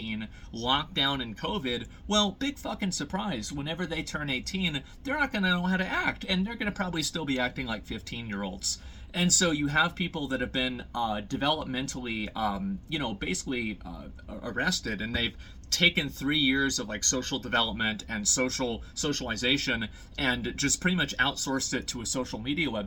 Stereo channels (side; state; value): both; identical; correlation 1.00